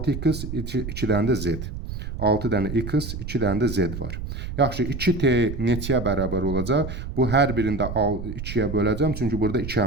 2 dənə də z. 6 dənə x, 2 dənə də z var. Yaxşı, 2t neçəyə bərabər olacaq? Bu hər birində 2-yə böləcəm, çünki burada 2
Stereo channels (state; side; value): noise; right; rumble, 7 dB below the sound